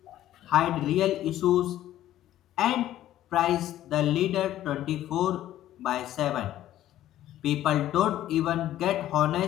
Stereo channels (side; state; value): right; quieter; 13.1 dB